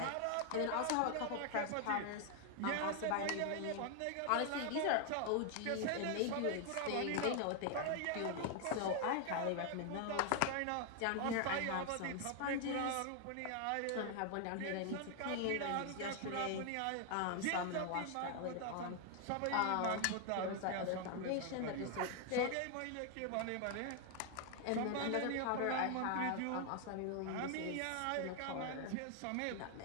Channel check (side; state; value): both; different; correlation 0.00